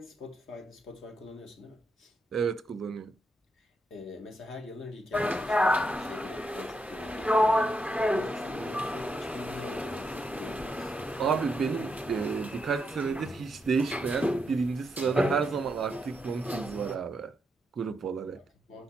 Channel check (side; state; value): both; normal; correlation 0.81